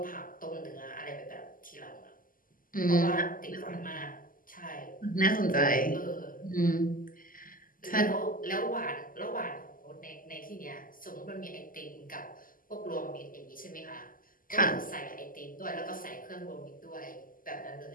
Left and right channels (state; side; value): late; right; 0.41 ms